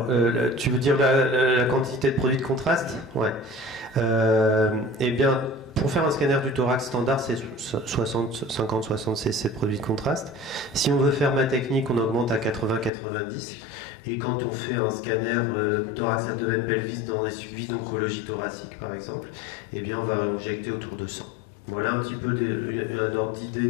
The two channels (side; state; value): right; drops out; at 12.9 s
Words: tu veux dire la quantité de produit de contraste? Ouais. Eh bien, pour faire un scanner du thorax standard, c'est 50-60 cc de produit de contraste. Si on veut faire ma technique, on augmente à 80-90. Et quand on fait un scanner thorax abdomen pelvis dans des suivis d'oncologie thoracique, par exemple, eh bien, on va injecter autour de 100. Voilà un petit peu un ordre